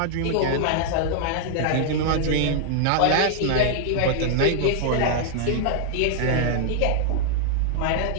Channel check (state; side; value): different; both; correlation -0.01